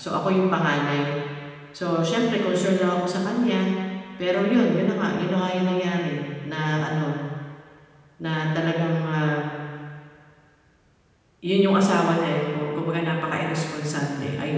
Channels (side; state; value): both; identical; correlation 1.00